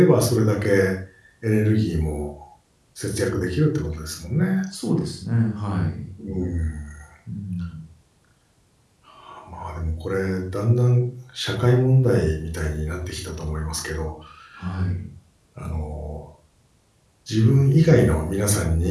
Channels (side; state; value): both; identical; correlation 1.00